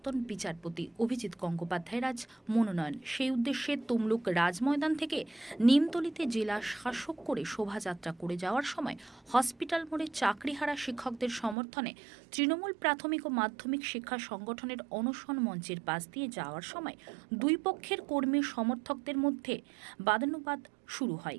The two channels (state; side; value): drops out; left; at 11.6 s